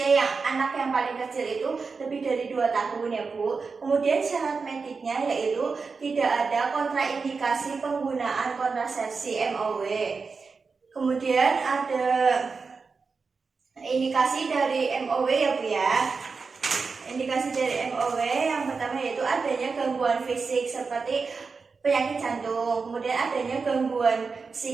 anak yang paling kecil itu lebih dari 2 tahun ya Bu. Kemudian syarat mediknya yaitu tidak ada kontraindikasi penggunaan kontrasepsi MOW. Kemudian ada indikasi dari MOW ya Bu ya. Indikasi dari MOW yang pertama yaitu adanya gangguan fisik seperti penyakit jantung, kemudian adanya gangguan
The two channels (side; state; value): left; quieter; 4.7 dB